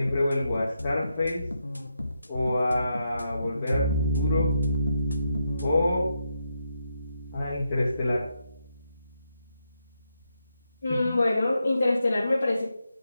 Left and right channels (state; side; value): inverted; both; correlation -0.83